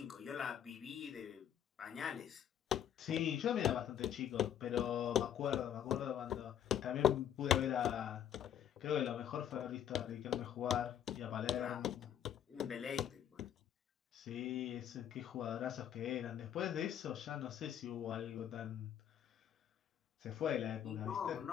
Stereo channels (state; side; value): quieter; right; 9.8 dB